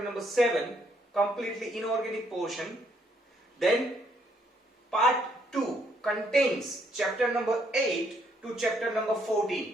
number 7, completely inorganic portion. Then part 2 contains chapter number 8 to chapter number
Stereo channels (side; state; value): both; normal; correlation 0.70